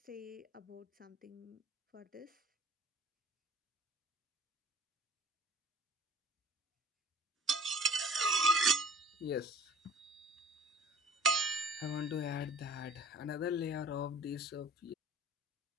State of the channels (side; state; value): both; normal; correlation 0.45